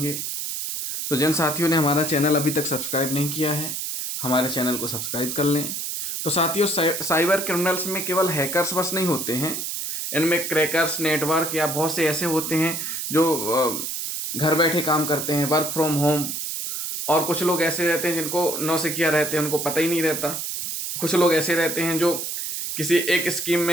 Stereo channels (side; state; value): right; noise; hiss, 4 dB below the sound